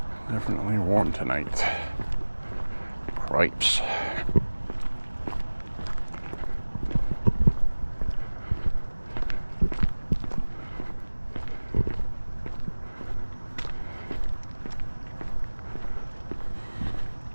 Definitely warm tonight. Cripes.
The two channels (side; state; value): both; inverted; correlation -1.00